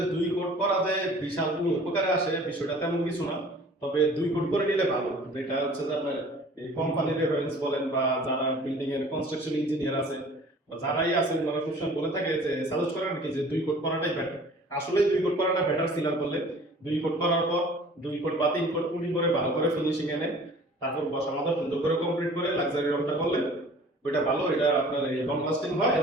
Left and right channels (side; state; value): both; normal; correlation 0.48